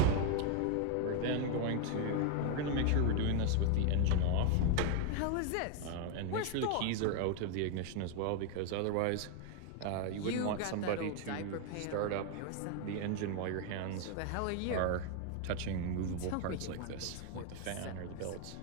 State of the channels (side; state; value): both; different; correlation 0.00